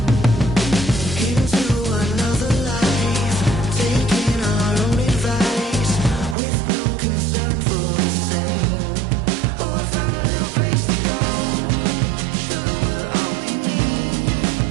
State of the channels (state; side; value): drops out; left; at 6.4 s